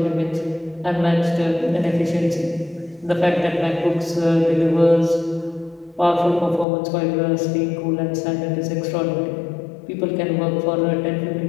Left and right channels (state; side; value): drops out; right; at 6.7 s